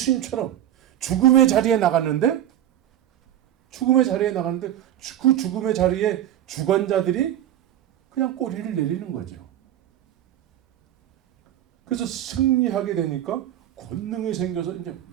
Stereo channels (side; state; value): left; quieter; 11.7 dB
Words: 죽음의 자리에 나갔는데 그 죽음의 자리에 주관자들이 그냥 꼬리를 내리는 거죠. 그래서 승리하게 되니까 권능이 생겨서 이제